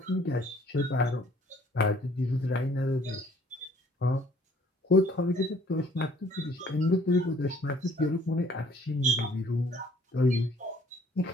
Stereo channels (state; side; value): normal; both; correlation 0.59